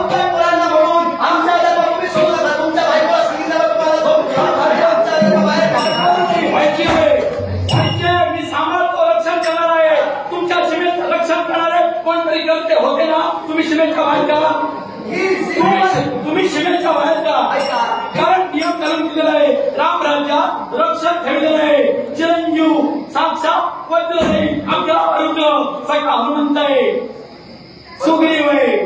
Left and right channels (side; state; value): both; identical; correlation 1.00